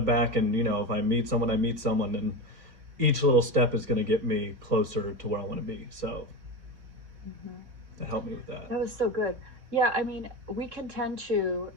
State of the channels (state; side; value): late; left; 3.6 ms